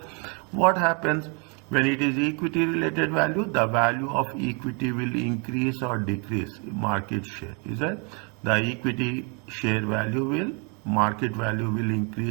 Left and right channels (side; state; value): left; quieter; 34.9 dB